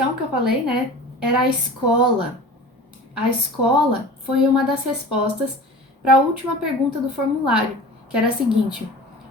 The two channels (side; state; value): both; normal; correlation 0.38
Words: que eu falei, né, era a escola. A escola foi uma das respostas para a última pergunta do formulário, que era a seguinte: